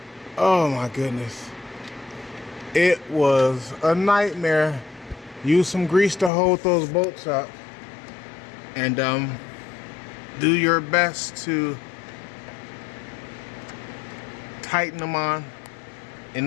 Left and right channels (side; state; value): right; drops out; at 6.3 s